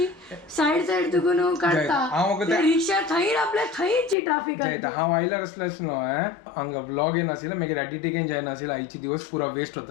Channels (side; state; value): right; drops out; at 4.2 s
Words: साईड तुकून काढता हांव म्हाका ते रिक्षा थंय आपल्या थंयची ट्राफिक जयता हांव आयल्यार असलेच न्हू हांगा व्लॉग येन आशिल्लो मागीर एडिटिंगेन जायना आशिल्लो आयचे दिवस पुरा वेस्ट